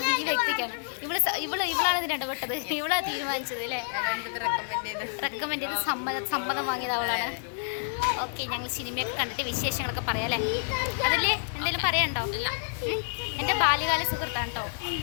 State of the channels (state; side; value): silent; right; digital silence